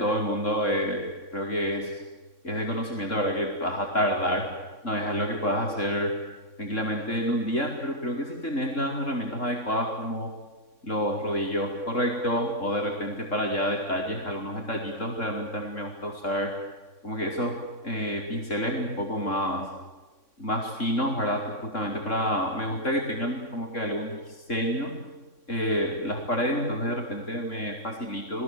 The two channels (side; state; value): right; late; 3.6 ms